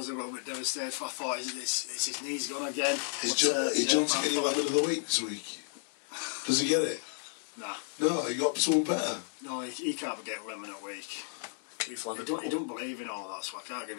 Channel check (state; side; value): silent; right; digital silence